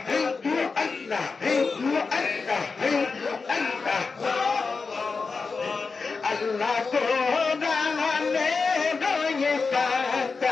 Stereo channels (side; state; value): right; quieter; 4.6 dB